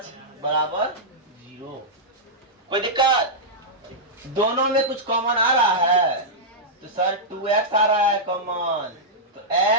बराबर 0। कोई दिक्कत? दोनों में कुछ कॉमन आ रहा है, तो सर 2x आ रहा है कॉमन, तो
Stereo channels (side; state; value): both; normal; correlation -0.10